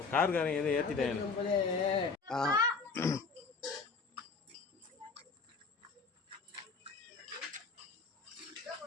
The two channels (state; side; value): quieter; right; 4.6 dB